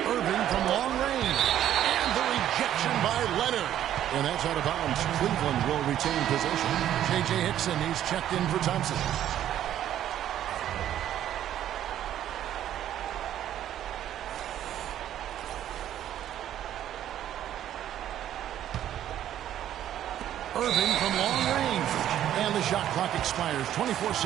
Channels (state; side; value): quieter; left; 11.4 dB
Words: Irving from long range. And the rejection by Leonard. And that's out of bounds. Cleveland will retain possession. J.J. Hickson, he's checked in for Thompson. Irving from long range. And the shot clock expires.